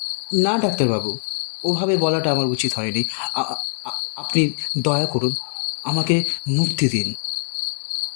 না ডাক্তারবাবু, ওভাবে বলাটা আমার উচিত হয়নি। আপনি দয়া করুন, আমাকে মুক্তি দিন।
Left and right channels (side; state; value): right; silent; 63 dB below the other